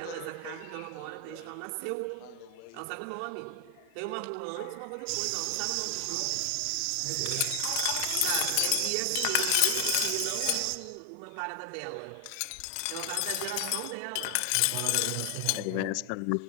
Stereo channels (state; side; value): different; both; correlation 0.00